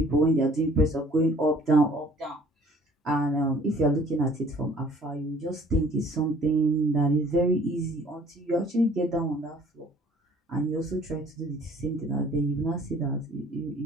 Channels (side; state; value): both; normal; correlation 0.55